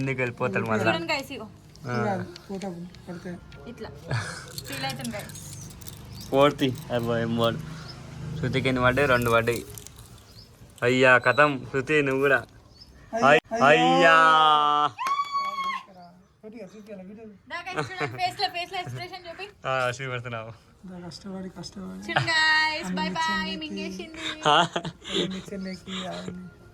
వెళ్ళిపోతాడు మళ్ళీ. చూడండి గైస్ ఇగో ఫోటో పడితే ఇట్లా ఫీల్ అవుతుంది గైస్. 4th అబ్బాయి మూడు. శృతికి ఎన్ని పడ్డాయి? 2 పడ్డాయి. అయ్యా కథం శృతి నువ్వు కూడా. అయ్యా ఫేస్ లో ఎక్స్ప్రెషన్ చూపి చూపెడుతున్నావు. కష్టపడి కష్టపడి చూడండి గైస్. By by మింగేసింది. చెన్నైకి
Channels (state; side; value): identical; both; correlation 1.00